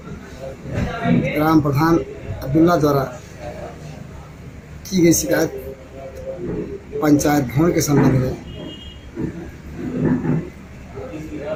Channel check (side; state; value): both; identical; correlation 1.00